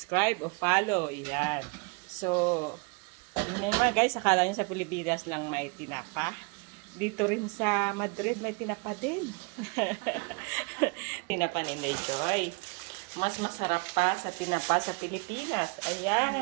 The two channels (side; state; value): left; quieter; 31.8 dB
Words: o follow. Ayan. So, yun mga guys, akala nyo sa Pilipinas lang may tinapa. Dito rin sa Madrid may tinapa din. Tinapa ni Inday Joy. Mas masarap pa sa tinapa sa Pilipinas.